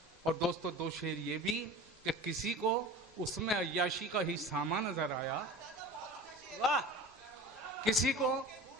और दोस्तों दो शेर ये भी कि किसी को उसमें अय्याशी का ही सामा नजर आया, वाह, किसी को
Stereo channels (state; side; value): normal; both; correlation 0.37